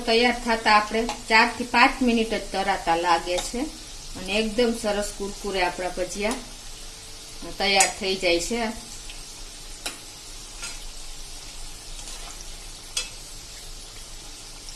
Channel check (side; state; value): both; identical; correlation 1.00